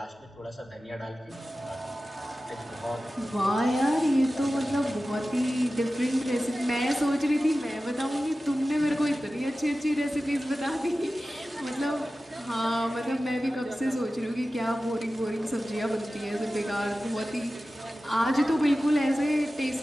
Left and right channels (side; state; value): both; normal; correlation 0.95